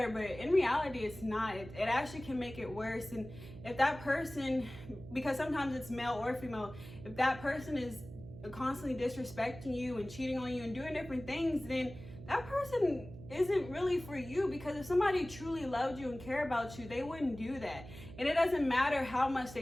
but in reality it's not. It actually can make it worse. And if that person, because sometimes it's male or female, if that person is constantly disrespecting you and cheating on you and doing different things, then that person isn't really for you. Because if somebody truly loved you and cared about you, they wouldn't do that. And it doesn't matter how much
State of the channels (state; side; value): noise; right; hum, 14 dB below the sound